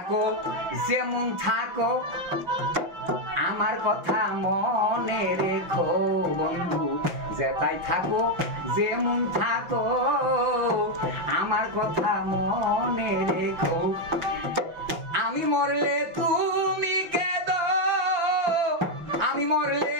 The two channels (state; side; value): late; left; 5.7 ms